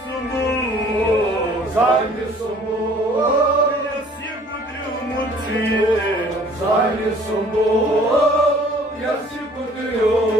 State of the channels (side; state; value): both; normal; correlation 0.54